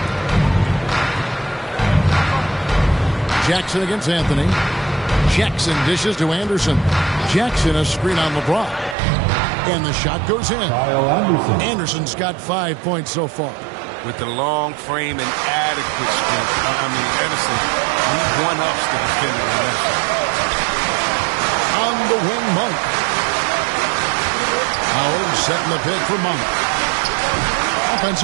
Jackson against Anthony. Jackson dishes to Anderson. Jackson a screen on LeBron. And the shot goes in. Anderson's got 5 points so far. With the long frame and adequate strength, Anderson, he one-ups the defender in that shot. On the wing, Monk. Howard setting the pick for Monk.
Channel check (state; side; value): drops out; left; at 9.0 s